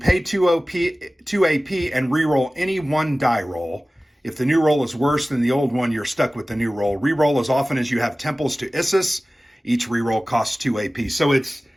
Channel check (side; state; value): both; normal; correlation 0.97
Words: 2 AP and reroll any 1 die roll. If the new roll is worse than the old one, you're stuck with the new roll. Reroll as often as you have temples to Isis. Each reroll costs 2 AP. So it's